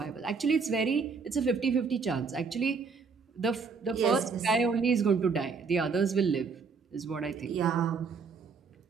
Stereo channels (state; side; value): quieter; left; 5.1 dB